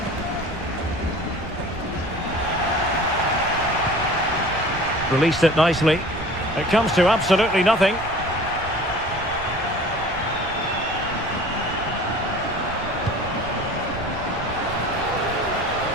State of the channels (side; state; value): right; noise; rumble, 14 dB below the sound